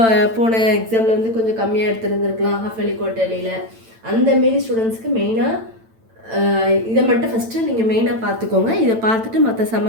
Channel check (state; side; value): late; left; 8.9 ms